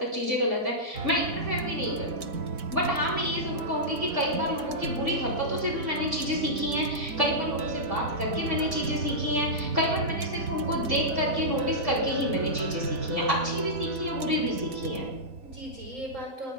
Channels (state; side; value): late; left; 4.1 ms